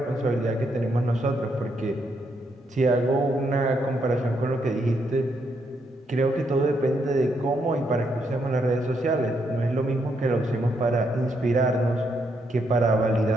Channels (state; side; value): normal; both; correlation 0.77